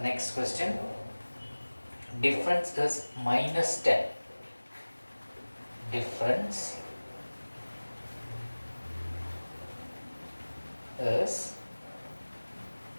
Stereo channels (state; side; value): inverted; both; correlation -1.00